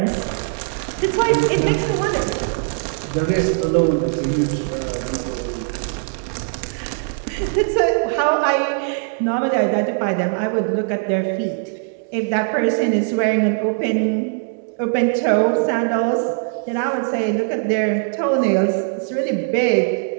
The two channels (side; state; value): left; silent; digital silence